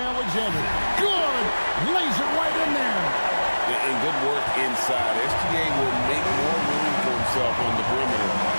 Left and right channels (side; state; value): both; inverted; correlation -1.00